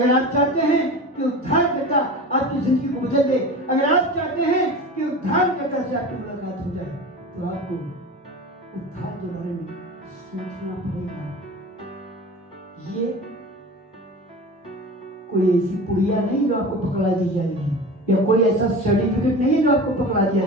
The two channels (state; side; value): normal; both; correlation 0.33